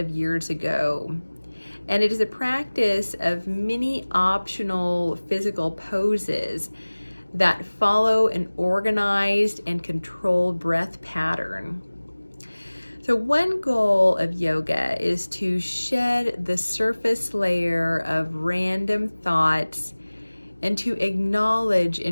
years ago, and it is a practice of many optional physical poses that follow an organized and controlled breath pattern. So one goal of yoga is to shed the surface layer of random thoughts and to acknowledge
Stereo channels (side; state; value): both; inverted; correlation -1.00